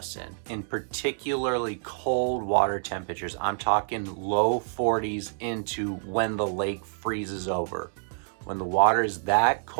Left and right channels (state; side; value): silent; left; 60 dB below the other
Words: In particularly cold water temperatures, I'm talking low 40s into when the lake freezes over. When the water is that